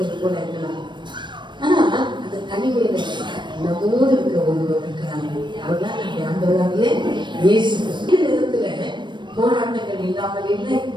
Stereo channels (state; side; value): late; left; 0.22 ms